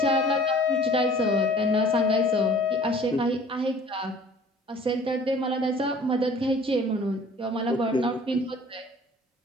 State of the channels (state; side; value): normal; both; correlation 0.50